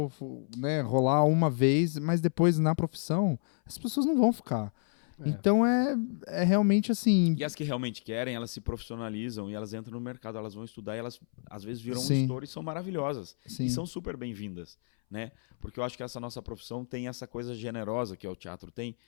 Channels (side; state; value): right; silent; 58 dB below the other